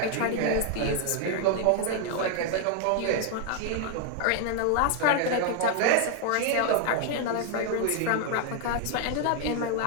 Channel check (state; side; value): different; both; correlation 0.00